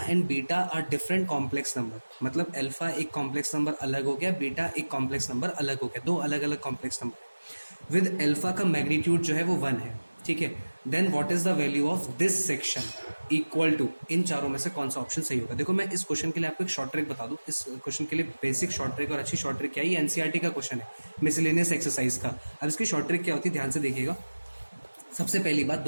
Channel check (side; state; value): both; inverted; correlation -1.00